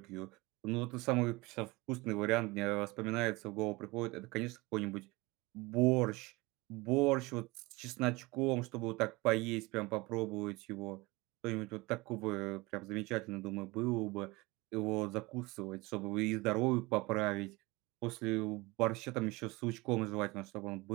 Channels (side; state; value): left; quieter; 22.9 dB